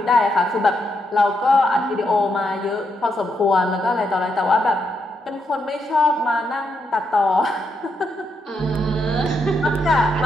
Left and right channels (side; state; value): both; normal; correlation 0.80